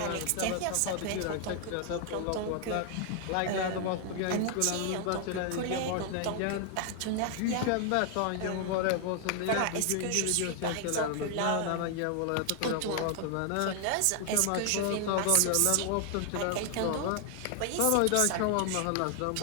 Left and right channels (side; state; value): both; different; correlation 0.00